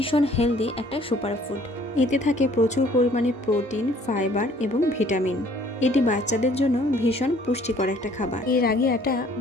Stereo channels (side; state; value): both; normal; correlation 0.58